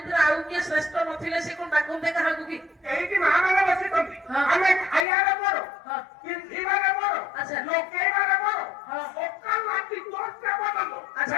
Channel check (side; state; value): right; drops out; at 5.1 s